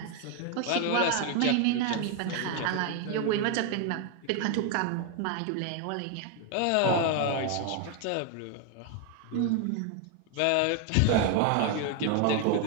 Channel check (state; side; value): different; both; correlation 0.01